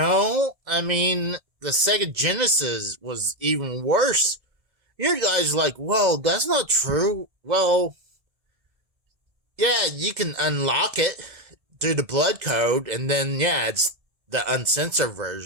I mean, the Sega Genesis was even worse. You guys are like, well, that's not true. Well, yeah, you can unlock it through the blood code, and then, yeah, it's the uncensored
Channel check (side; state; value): left; late; 2.0 ms